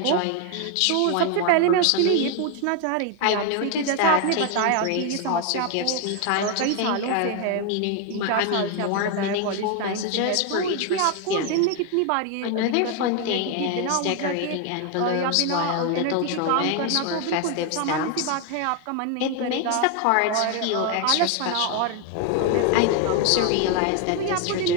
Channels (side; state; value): both; different; correlation 0.01